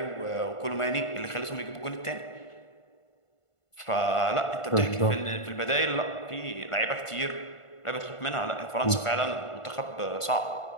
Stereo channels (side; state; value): right; late; 1.5 ms